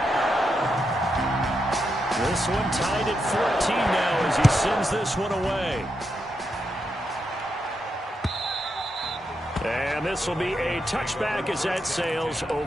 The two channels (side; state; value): both; normal; correlation 0.84